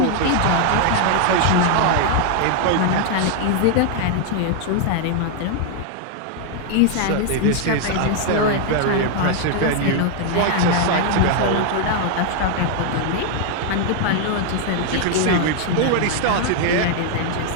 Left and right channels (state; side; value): different; both; correlation 0.00